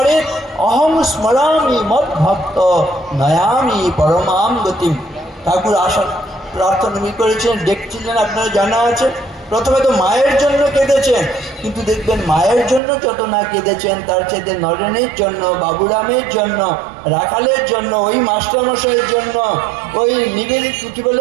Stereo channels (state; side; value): drops out; left; at 12.8 s